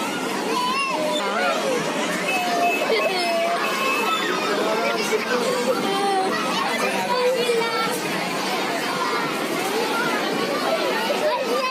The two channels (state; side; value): identical; both; correlation 1.00